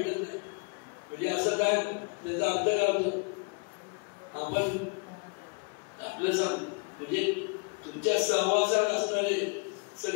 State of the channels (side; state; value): right; quieter; 35.0 dB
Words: नाही. म्हणजे असं काय, त्याचा अर्थ काय होतो, आपण आपलं सांग म्हणजे तुमच्या सहवासात असणारे